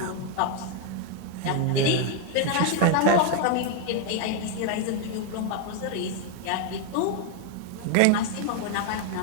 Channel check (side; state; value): both; different; correlation 0.01